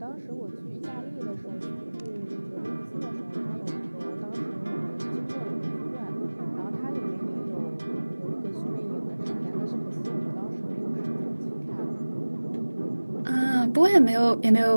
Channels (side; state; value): both; inverted; correlation -1.00